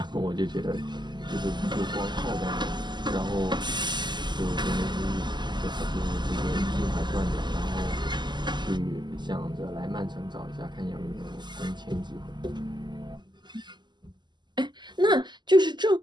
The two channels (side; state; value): left; late; 0.21 ms